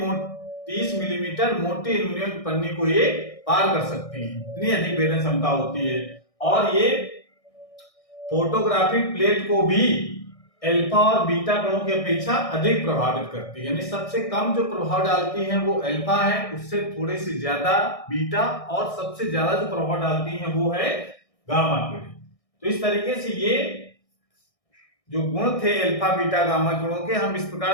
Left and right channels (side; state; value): right; late; 1.6 ms